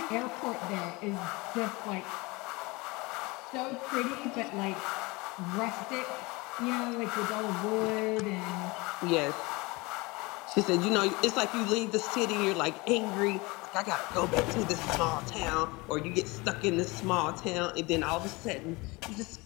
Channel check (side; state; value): right; quieter; 24.4 dB